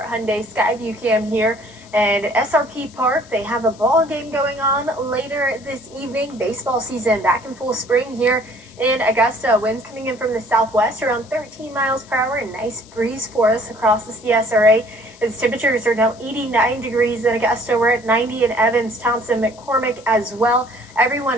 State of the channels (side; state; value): left; noise; hiss, 24 dB below the sound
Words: Hyundai Skyview Cam here. And SRP Park, they have a ball game going on later this evening. Baseball season back in full spring here in Augusta. Winds coming in from the southwest around 13 miles per hour. A nice breeze for us across the CSRA. Its temperatures are now 89 degrees in Augusta. We're at 90 in Evans, Thompson, McCormick as well.